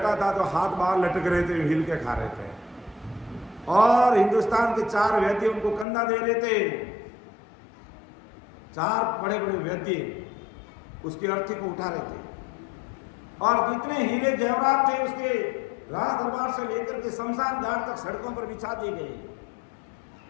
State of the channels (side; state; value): right; drops out; at 5.9 s